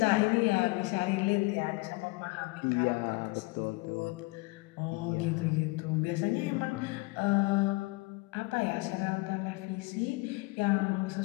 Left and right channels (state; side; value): quieter; right; 24.3 dB